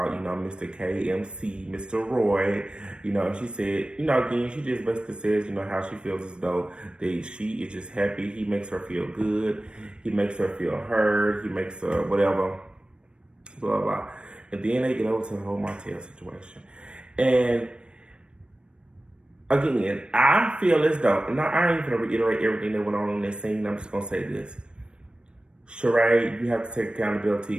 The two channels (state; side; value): late; left; 0.055 ms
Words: you know, Mr. KMC, Mr. Roy, you know, and she said, you know, again, she just basically says, you know, how she feels as though that she is just happy. He makes her feel good. He makes her feel heard. He makes her whatever, blah, blah. And then they get over to the whole Martell situation. And again, I feel as though, now I ain't gonna reiterate everything that went on in this scene. I'm just gonna say this. Sheree, you have to take